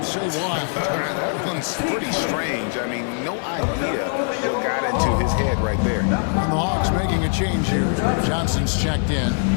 say why. That one's pretty strange. I mean, no idea what got into his head right there. And the Hawks making a change here. Johnson's checked in.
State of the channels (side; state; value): right; silent; digital silence